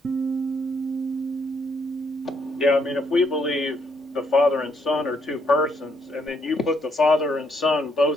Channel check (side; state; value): both; normal; correlation 0.72